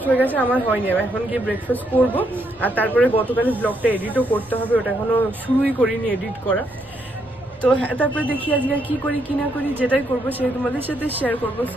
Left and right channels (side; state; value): left; noise; rumble, 25 dB below the sound